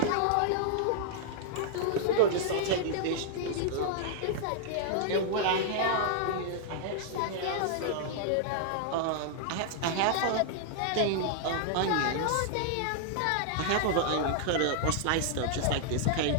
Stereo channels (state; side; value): different; both; correlation -0.01